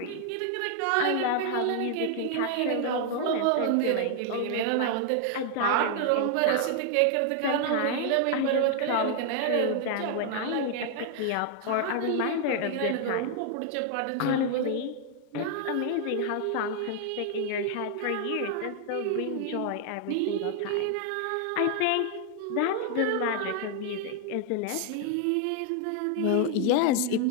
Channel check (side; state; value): both; different; correlation 0.00